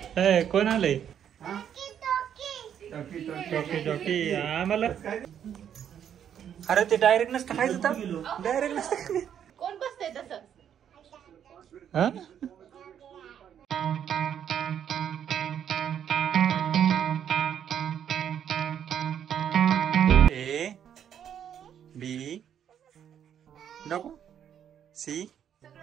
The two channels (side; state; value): left; quieter; 9.1 dB